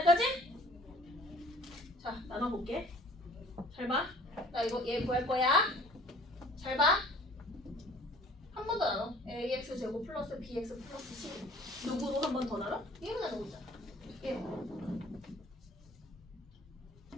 자 나눠볼게. 잘 봐. 나 이거 얘 구할 거야. 잘 봐. 한 번 더 나눠. ax 제곱 플러스 bx 플러스 c. 누구로 한 번 더 나눠? 얘로 나누고 있잖아. 얘.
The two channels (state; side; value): normal; both; correlation 0.52